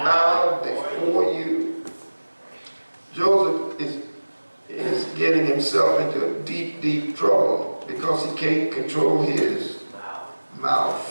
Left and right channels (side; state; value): both; inverted; correlation -1.00